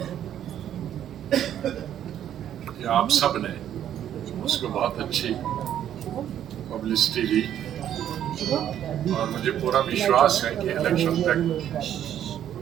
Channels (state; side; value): quieter; left; 10.6 dB